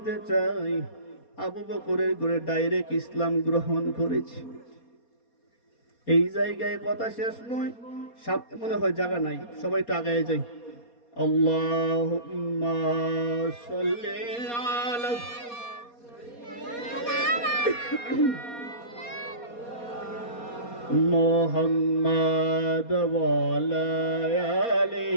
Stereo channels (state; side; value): late; right; 4.2 ms